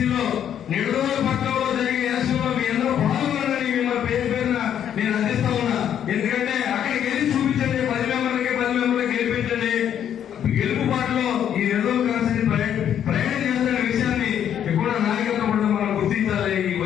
నిడదవోలు పట్టణంలో జరిగే ఎలక్షన్ లో మీ అందరూ పాల్గొనాలని మిమ్మల్ని పేరున నేను అందిస్తా ఉన్నా. ఎందుకంటే అక్కడికి వెళ్ళి చూపించండి, 10 మెంబర్లకి గెలిపించండి. గెలుపు పాటలో ఈ నిడదవోలు కాన్స్టిట్యూన్సీ ప్రయాణం చేస్తున్న విషయాన్ని కూడా నాయకత్వం కూడా మనం గుర్తించాలి. ఈ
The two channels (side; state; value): right; quieter; 9.6 dB